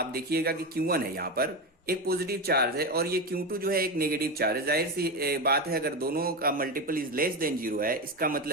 देखिएगा कि Q1 है, यहां पर एक पॉजिटिव चार्ज है और ये Q2 जो है एक नेगेटिव चार्ज है। जाहिर सी बात है अगर दोनों का मल्टीपल इज लेस देन 0 है, इसका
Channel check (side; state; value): both; normal; correlation 0.17